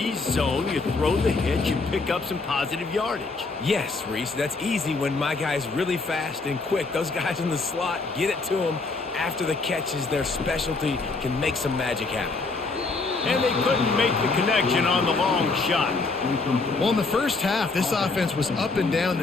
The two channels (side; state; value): right; quieter; 3.8 dB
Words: zone, you throw the hitch, you pick up some positive yardage. Yes, Reese, that's easy when my guy's really fast and quick. Those guys in the slot, get it to them. After the catch is their specialty, can make some magic happen. And they couldn't make the connection on the long shot. Well, in the first half, this offense was up and down